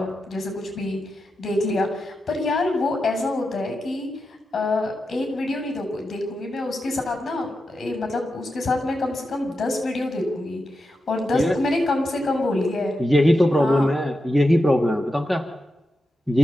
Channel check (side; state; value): both; normal; correlation 0.89